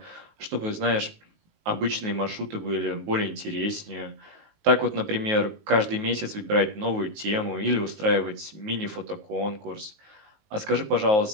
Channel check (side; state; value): left; late; 19 ms